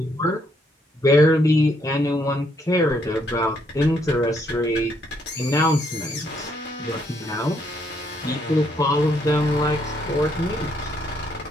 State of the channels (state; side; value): normal; both; correlation 0.72